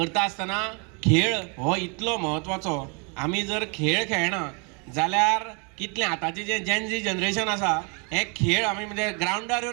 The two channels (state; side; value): quieter; left; 34.5 dB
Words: आसतना खेळ हो इतलो म्हत्वाचो. आमी जर खेळ खेळना जाल्यार कितलें आतांचें जें जेन जी जनरेशन आसा हे खेळ आमी म्हणजे ग्रावंडार